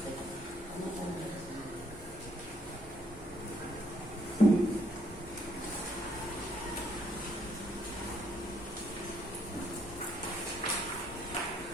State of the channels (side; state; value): both; normal; correlation 0.69